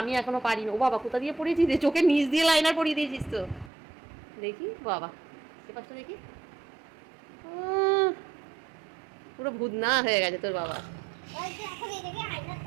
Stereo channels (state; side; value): drops out; left; at 3.7 s